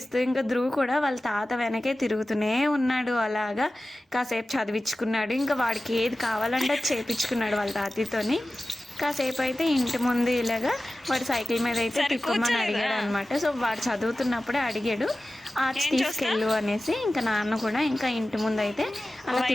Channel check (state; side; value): normal; both; correlation 0.96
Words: ఇంకా ధ్రువ్ కూడా వాళ్ళ తాత వెనకే తిరుగుతూనే ఉన్నాడు. అలాగా కాసేపు చదివించుకున్నాడు. ఇంకా వాడికి ఏది కావాలంటే అది చేపించుకున్నాడు వాళ్ళ తాతతోని. కాసేపు అయితే ఇంటి ముందు ఇలాగా వాడు సైకిల్ మీద అయితే తిప్పమని అడిగాడు అనమాట. సో వాడు చదువుతున్నప్పుడే అడిగాడు ఆర్ట్స్ తీసుకెళ్ళు అనేసి. ఇంకా నాన్న కూడా ఇంకా ఇంటి ముందు అయితే అలా